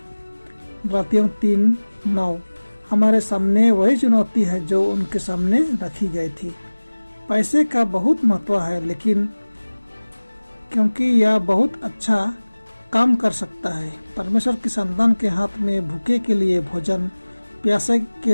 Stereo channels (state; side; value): inverted; both; correlation -1.00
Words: गलातियों 3:9। हमारे सामने वही चुनौती है जो उनके सामने रखी गई थी। पैसे का बहुत महत्व है, लेकिन क्योंकि यह बहुत अच्छा काम कर सकता है। परमेश्वर की संतान के हाथ में भूखे के लिए भोजन, प्यासे के